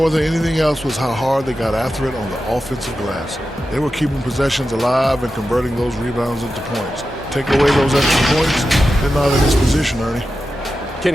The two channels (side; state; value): both; normal; correlation 0.91